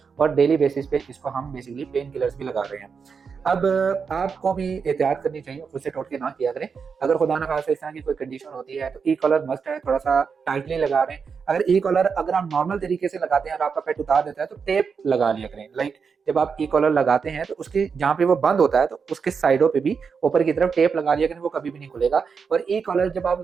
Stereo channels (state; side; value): quieter; left; 5.8 dB